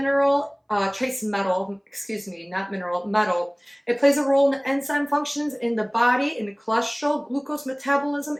It plays a role in the enzyme functions in the body, in the cholesterol, glucose metabolism,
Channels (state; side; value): identical; both; correlation 1.00